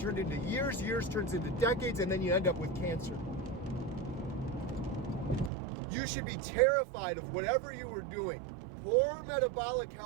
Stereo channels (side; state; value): left; drops out; at 5.5 s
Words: into years, years turns into decades, and then you end up with cancer. You should be terrified of whatever you were doing. Poor metabolic